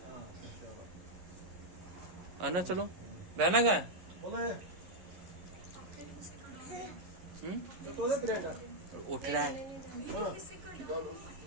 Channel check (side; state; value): left; late; 11 ms